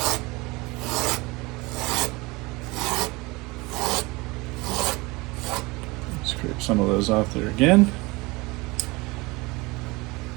Scrape some of those off there again.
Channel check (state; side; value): quieter; left; 24.0 dB